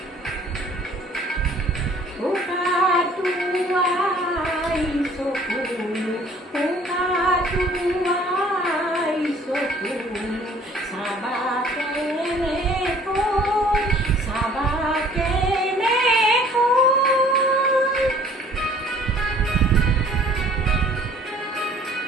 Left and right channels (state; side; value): normal; both; correlation 0.54